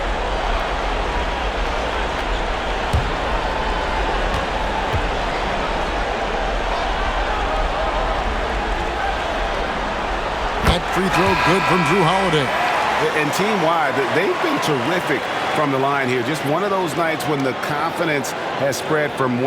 That free throw good from Drew Holiday. And team-wide, they've been terrific from the line here. Just one of those nights when the confidence has spread from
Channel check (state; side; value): identical; both; correlation 1.00